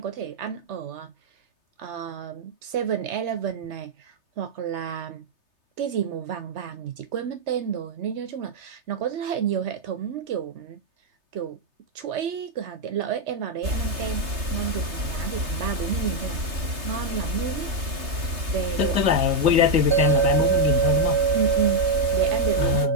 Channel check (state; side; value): late; left; 3.3 ms